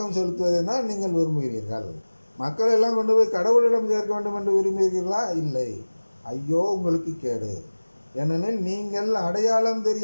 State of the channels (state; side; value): inverted; both; correlation -1.00